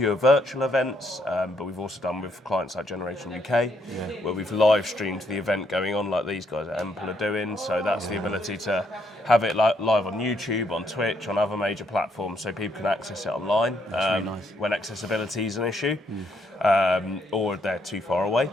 virtual events, but we've also done with clients like Generation UK, where we've live streamed the event going on, like these guys at Emple are doing. So that's the ability to have it live on YouTube, on Twitch, on other major platforms, so people can access it online really nice. when accessibility is an issue, or they're too far away.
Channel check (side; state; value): both; normal; correlation 0.74